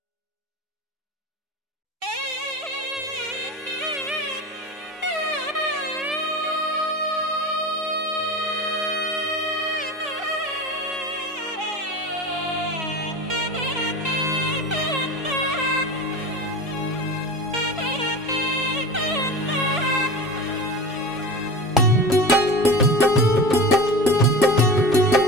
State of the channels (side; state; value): both; normal; correlation 0.31